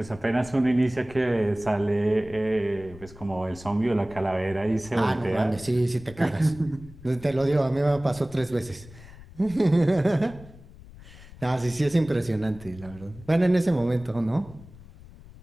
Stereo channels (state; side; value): noise; left; rumble, 19 dB below the sound